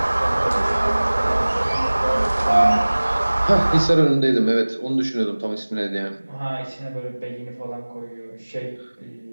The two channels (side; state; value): both; inverted; correlation -1.00